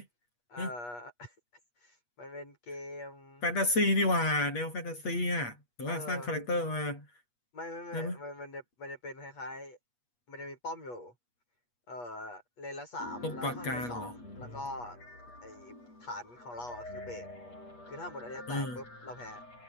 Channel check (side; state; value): right; late; 8.3 ms